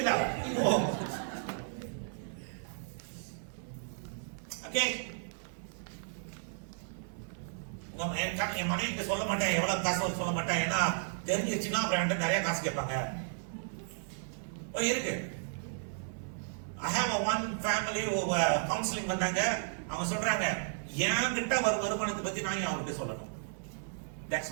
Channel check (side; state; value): left; silent; 55 dB below the other